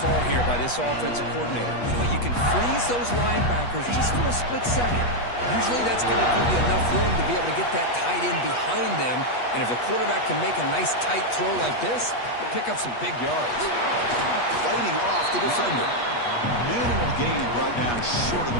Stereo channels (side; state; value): right; late; 8.3 ms